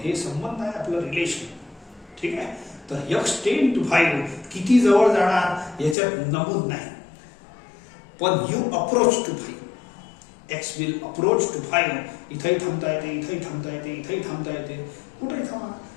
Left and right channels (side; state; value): right; drops out; at 6.0 s